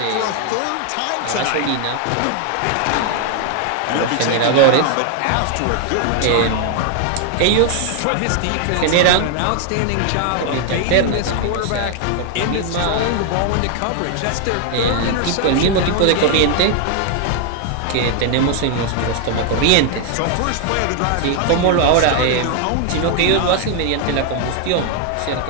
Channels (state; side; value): different; both; correlation 0.00